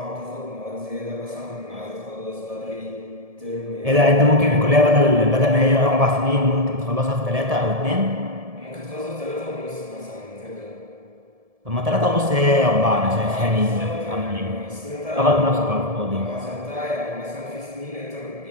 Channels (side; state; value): left; late; 1.7 ms